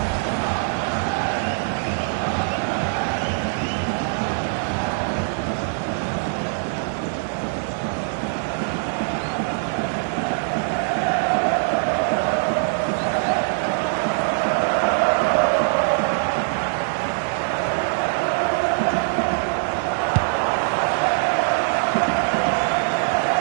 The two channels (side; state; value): left; silent; 64 dB below the other